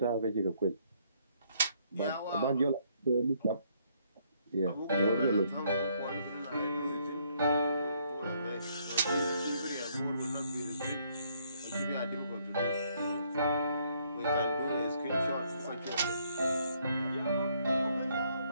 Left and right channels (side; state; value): both; inverted; correlation -0.69